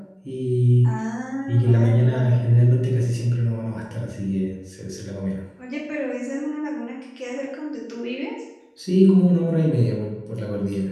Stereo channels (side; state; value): both; identical; correlation 1.00